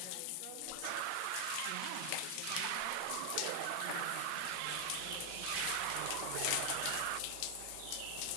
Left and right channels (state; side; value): different; both; correlation 0.00